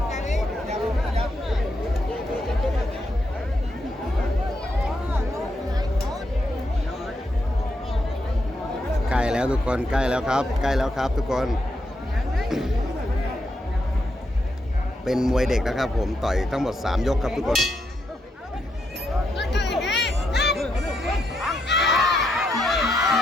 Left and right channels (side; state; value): both; normal; correlation 0.81